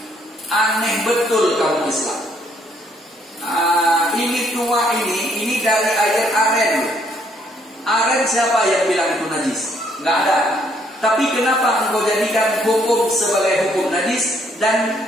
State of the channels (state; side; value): normal; both; correlation 0.68